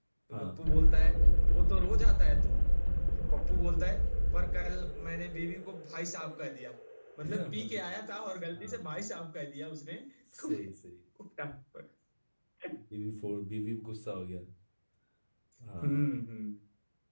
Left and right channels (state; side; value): inverted; both; correlation -1.00